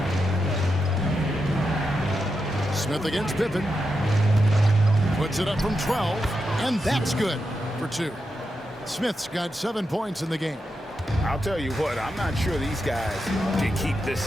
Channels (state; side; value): normal; both; correlation 0.87